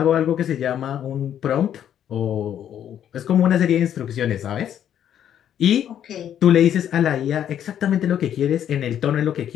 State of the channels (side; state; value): right; quieter; 10.0 dB